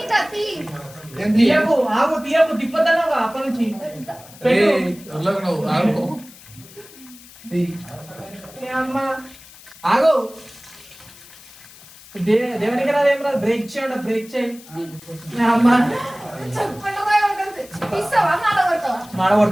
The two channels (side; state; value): left; noise; hiss, 21 dB below the sound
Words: తీయకు ఆగు తీయకు తిప్పదన్నావా అప్పటి నుంచి. నువ్వు ఆగు. ఏ అమ్మ ఆగు. దేవునికి రాదు ఏం రాదు. బ్రేక్ చేయండి బ్రేక్ చేయి. ఏ అమ్మ